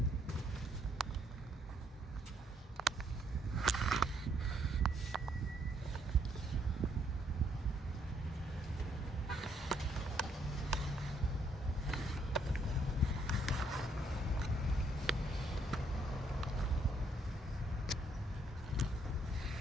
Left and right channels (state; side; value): normal; both; correlation 0.70